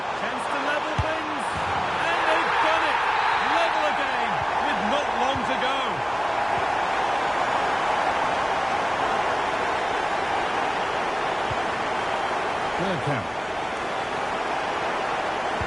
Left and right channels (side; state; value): both; identical; correlation 1.00